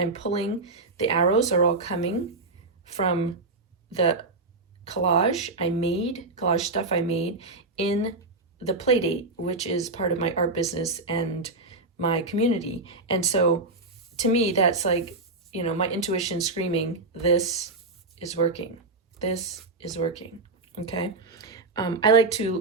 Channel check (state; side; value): quieter; left; 3.4 dB